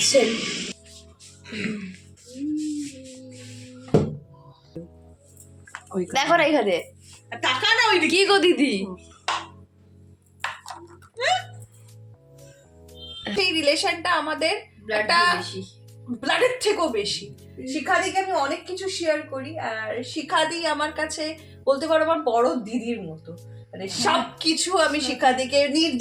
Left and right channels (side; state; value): both; identical; correlation 1.00